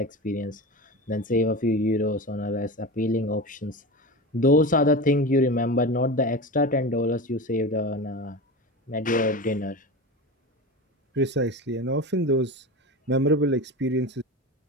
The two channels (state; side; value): normal; both; correlation 0.26